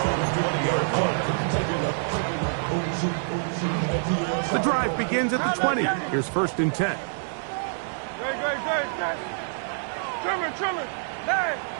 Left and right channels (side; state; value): left; silent; digital silence